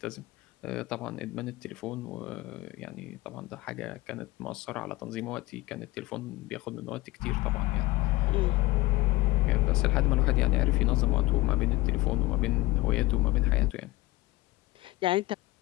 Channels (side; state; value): right; quieter; 19.8 dB